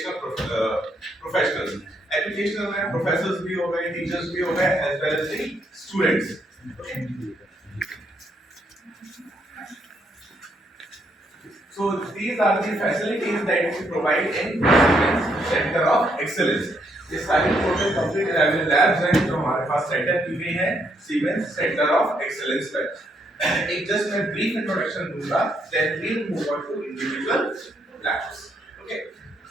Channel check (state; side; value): normal; both; correlation 0.74